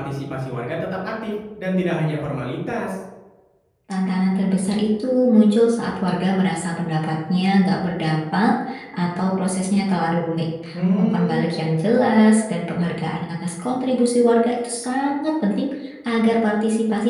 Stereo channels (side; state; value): both; identical; correlation 1.00